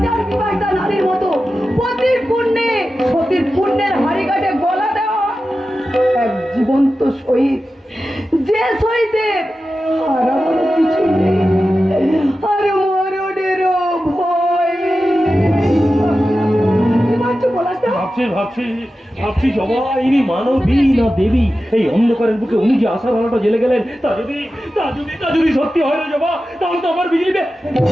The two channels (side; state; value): both; normal; correlation 0.93